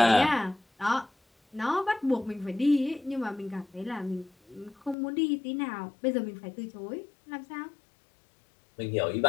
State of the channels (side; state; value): right; drops out; at 5.0 s